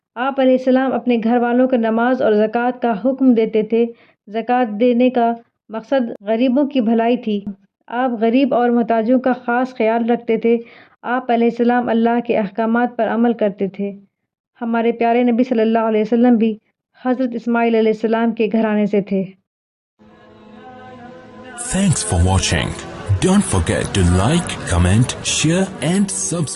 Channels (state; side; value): identical; both; correlation 1.00